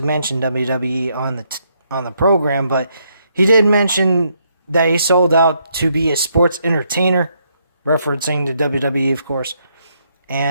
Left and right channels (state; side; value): inverted; both; correlation -0.75